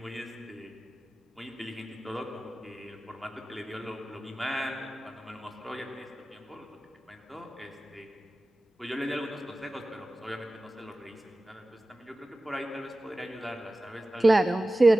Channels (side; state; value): both; normal; correlation 0.96